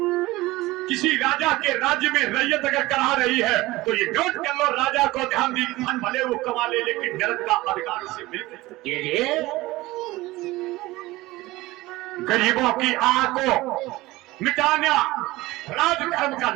किसी राजा के राज्य में रैयत अगर करा रही है तो ये नोट कर लो, राजा को ध्यान दी, धन भले वो कमा ले लेकिन नरक का अधिकार उसे मिल। गरीबों की आह को मिटाना राजधर्म का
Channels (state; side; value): quieter; left; 19.2 dB